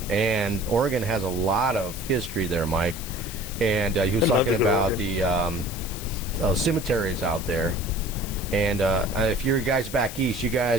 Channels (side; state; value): left; noise; hiss, 11 dB below the sound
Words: And Oregon has a lot of history there, Mike. And he was talking about the cemeteries out there. And if you're guys back east, you